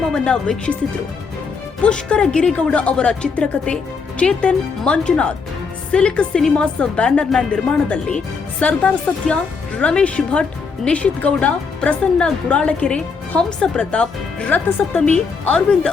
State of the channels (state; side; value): quieter; right; 5.1 dB